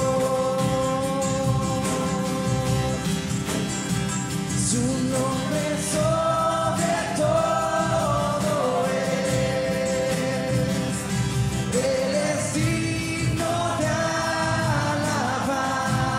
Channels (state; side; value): identical; both; correlation 1.00